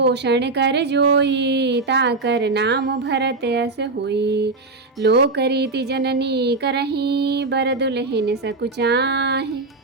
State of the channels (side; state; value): left; quieter; 3.5 dB